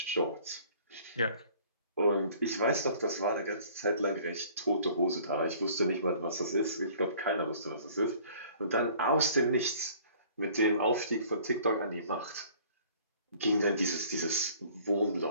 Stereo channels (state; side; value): inverted; both; correlation -0.53